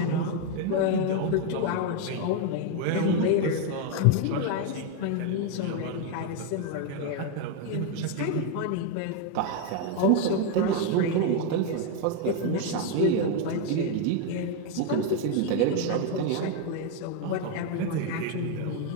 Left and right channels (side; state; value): both; different; correlation 0.02